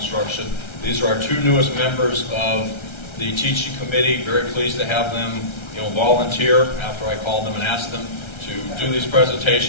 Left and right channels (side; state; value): right; late; 1.3 ms